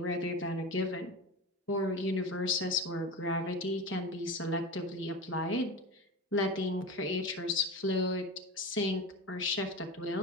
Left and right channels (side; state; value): both; normal; correlation 0.27